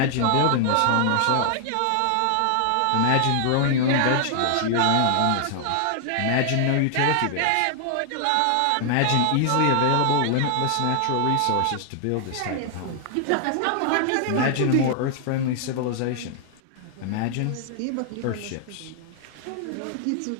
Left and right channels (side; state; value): both; different; correlation 0.00